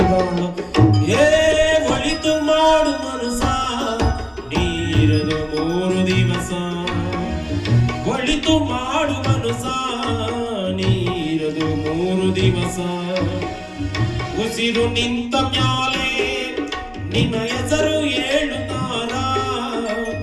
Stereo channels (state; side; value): identical; both; correlation 1.00